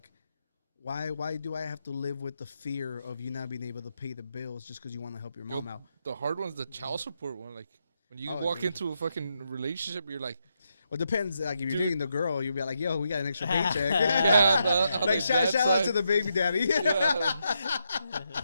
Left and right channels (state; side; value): inverted; both; correlation -0.82